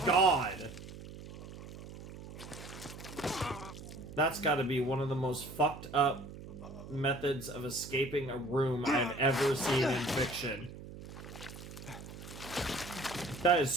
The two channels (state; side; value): noise; right; hum, 13 dB below the sound